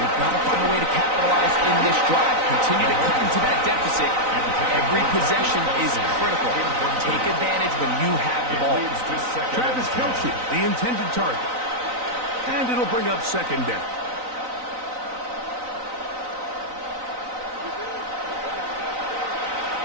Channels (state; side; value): late; left; 3.9 ms